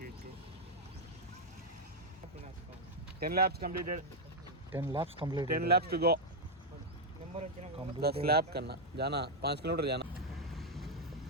10 laps completed. 10 laps completed. 10 laps to go. 10 lap करना जाना 5 किलोमीटर जाना.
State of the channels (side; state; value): both; normal; correlation 0.00